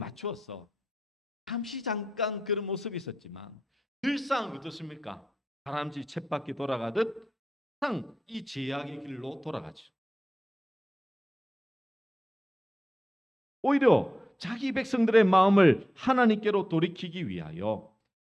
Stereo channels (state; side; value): normal; both; correlation 0.91